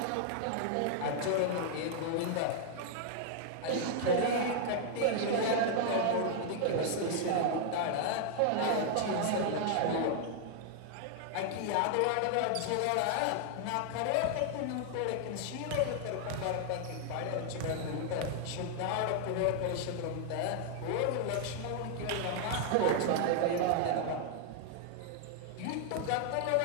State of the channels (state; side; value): different; both; correlation -0.01